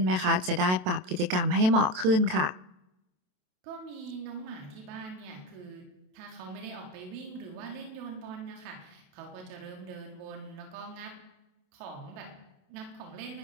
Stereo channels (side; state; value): left; late; 27 ms